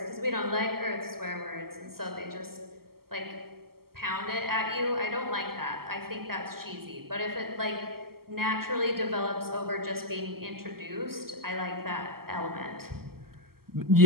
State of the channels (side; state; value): left; late; 0.94 ms